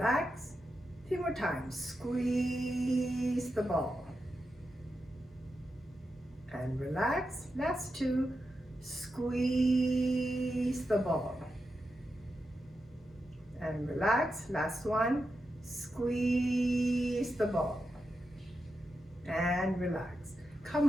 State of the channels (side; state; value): both; normal; correlation 0.88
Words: 3 more times. Squeeze the ball. And relax. Last 2. Squeeze the ball. And relax. Last 1. Squeeze the ball. And relax. Come